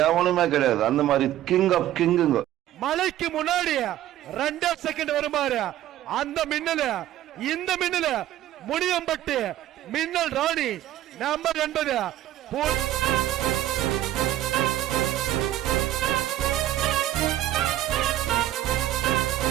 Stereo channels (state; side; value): quieter; left; 13.1 dB